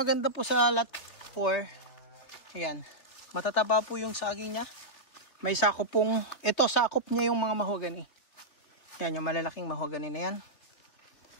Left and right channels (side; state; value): right; late; 3.2 ms